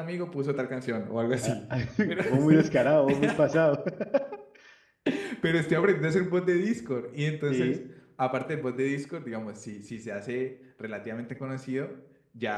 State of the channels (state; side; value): identical; both; correlation 1.00